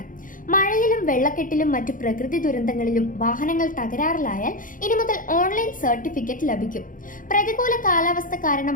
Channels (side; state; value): right; late; 0.39 ms